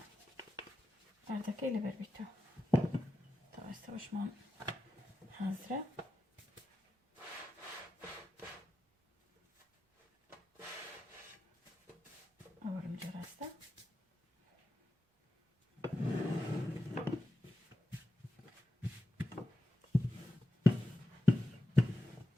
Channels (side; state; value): both; normal; correlation 0.90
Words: أردكا اللي بربيتو طبعا استوش مان حاضرة أورم جراستا